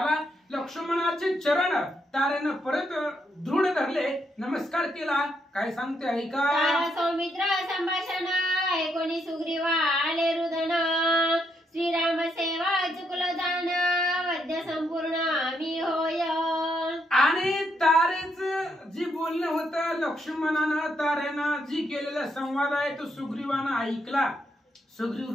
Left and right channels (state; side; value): normal; both; correlation 0.77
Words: लक्ष्मणाचे चरण तारेनं परत दृढ धरले, नमस्कार केला. काय सांगते ऐका. तारा सौमित्र संभाषण ऐकोनी सुग्रीवा आले रुदन श्रीराम सेवा चुकलं जाण वद्य संपूर्ण मी होय. आणि तारेच जी बोलणं होतं लक्ष्मणानं तारेनं जी केलेला संवाद आहे तो सुग्रीवानं ऐकला.